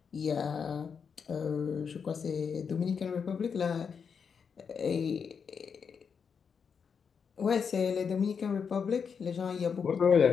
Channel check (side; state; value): right; quieter; 6.4 dB